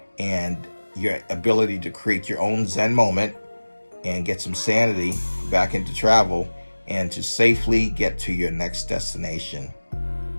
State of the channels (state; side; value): inverted; both; correlation -1.00